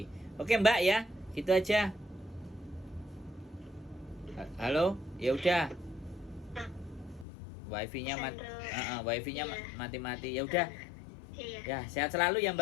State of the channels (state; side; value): drops out; right; at 7.2 s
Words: Oke Mbak ya, gitu aja. Halo, ya udah. Wifi-nya wifi-nya Iya. mati-mati. Ya udah. Iya. Ya, sehat selalu ya